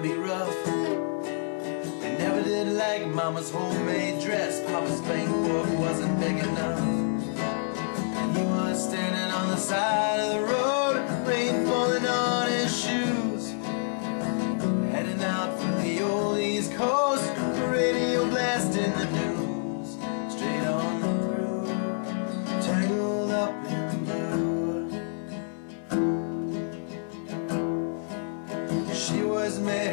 be rough. They never did like Mama's homemade dress, Papa's bank book wasn't big enough. And he was standing on the side of the road, rain falling on his shoes, heading out for the old East Coast, radio blasting the news, straight on through, tangled up in blue. She was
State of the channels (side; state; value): right; silent; 60 dB below the other